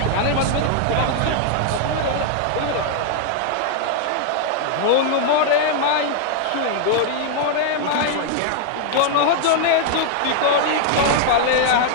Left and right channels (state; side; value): different; both; correlation 0.00